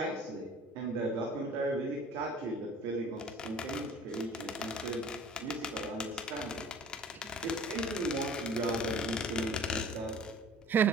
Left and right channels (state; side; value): normal; both; correlation 0.47